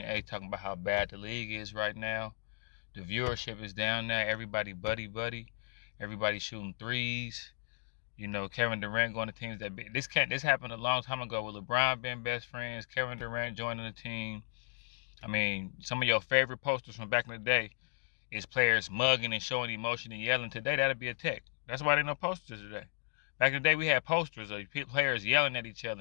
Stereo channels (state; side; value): silent; right; digital silence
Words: A. talking about how bad the league is right now. The viewership is down there. Everybody buddy. Everybody shooting threes. You know, Kevin Durant going to teams that this happened a long time ago with LeBron being best friends, Kevin Durant joining the team. I mean, some of your favorite posters from back in the day is players mugging and showing emotion and yelling. Today, that'll be a tech. That's why there no posters today. Back in the day, we had posters of players yelling at each